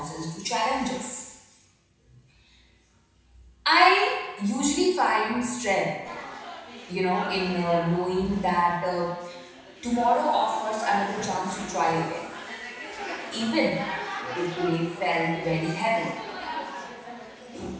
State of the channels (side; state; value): both; identical; correlation 1.00